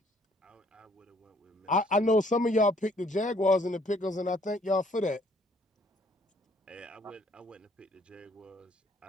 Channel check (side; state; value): both; normal; correlation 0.63